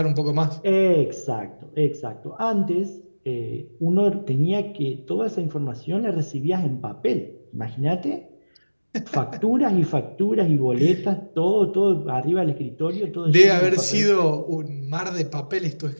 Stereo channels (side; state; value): both; inverted; correlation -1.00